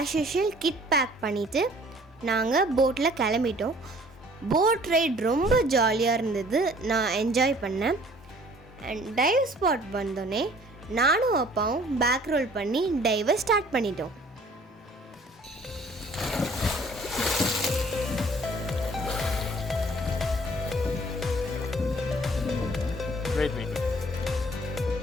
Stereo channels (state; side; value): normal; both; correlation 0.54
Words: யூஷுவல் கிட் பேக் பண்ணிவிட்டு நாங்கள் போட்டில் கிளம்பிட்டோம். போட் ரைட் ரொம்ப ஜாலியாக இருந்தது. நான் என்ஜாய் பண்ணேன். அண்ட் டைவ் ஸ்பாட் வந்தோடனே நானும் அப்பாவும் பேக் ரோல் பண்ணி டைவை ஸ்டார்ட் பண்ணிட்டோம்.